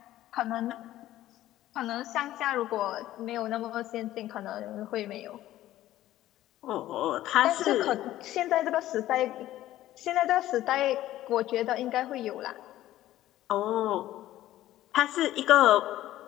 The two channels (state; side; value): quieter; right; 14.3 dB